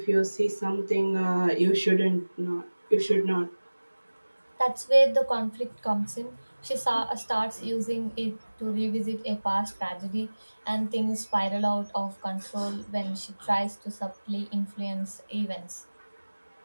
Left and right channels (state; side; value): inverted; both; correlation -1.00